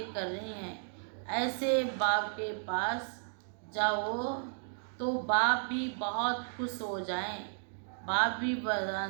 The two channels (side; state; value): left; silent; digital silence